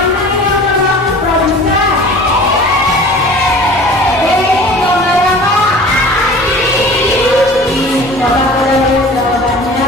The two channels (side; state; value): both; normal; correlation 0.43